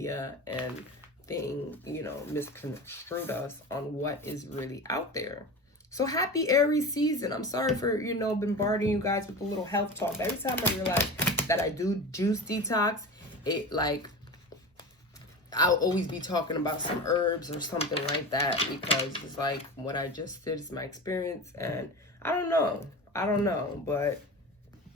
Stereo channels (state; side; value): normal; both; correlation 0.30